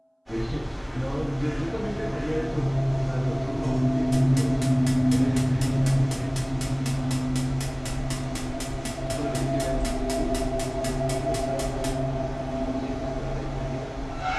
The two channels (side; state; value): both; identical; correlation 1.00